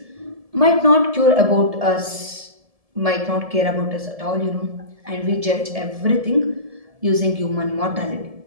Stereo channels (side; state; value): left; late; 1.7 ms